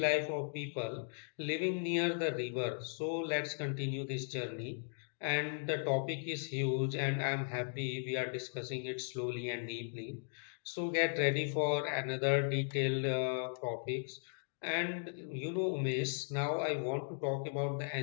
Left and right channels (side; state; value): right; silent; digital silence